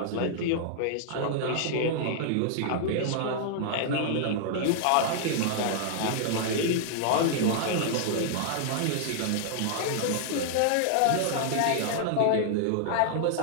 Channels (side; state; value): both; different; correlation -0.01